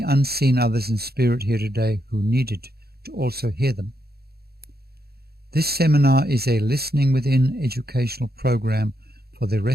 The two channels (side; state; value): left; late; 0.46 ms